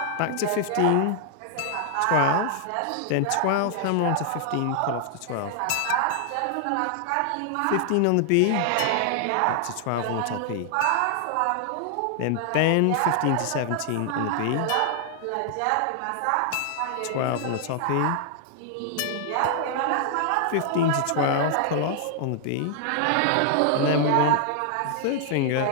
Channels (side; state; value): both; different; correlation 0.00